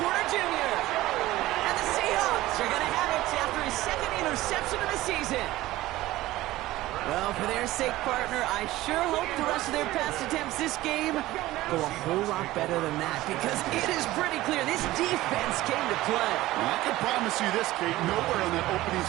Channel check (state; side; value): quieter; left; 16.9 dB